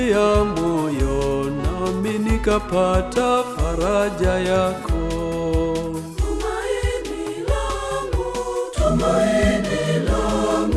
moyo nami nikapata faraja yako. Tumaini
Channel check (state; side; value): identical; both; correlation 1.00